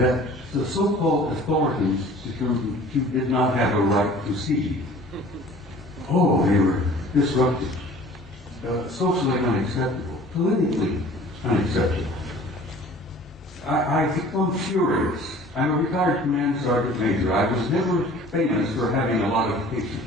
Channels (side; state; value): both; normal; correlation 0.48